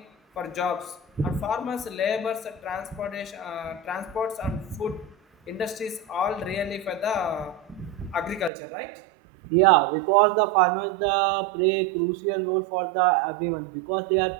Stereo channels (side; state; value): left; drops out; at 8.5 s